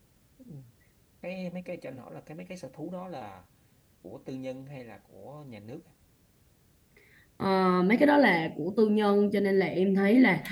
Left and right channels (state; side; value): identical; both; correlation 1.00